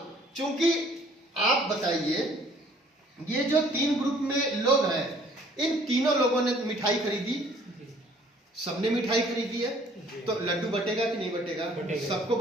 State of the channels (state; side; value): normal; both; correlation 0.57